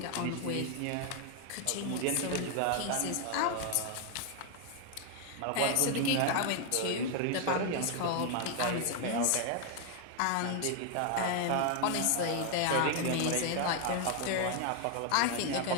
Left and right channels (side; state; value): both; different; correlation 0.00